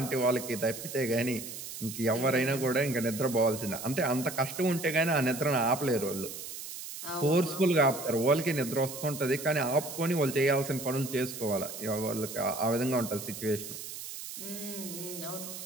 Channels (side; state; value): right; noise; hiss, 9 dB below the sound